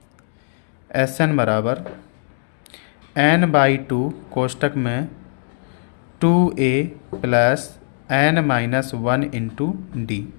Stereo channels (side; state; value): right; silent; 63 dB below the other